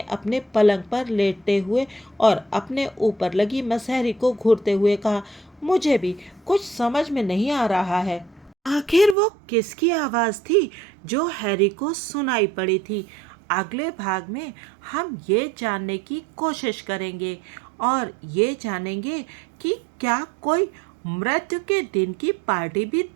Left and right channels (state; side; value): drops out; left; at 9.2 s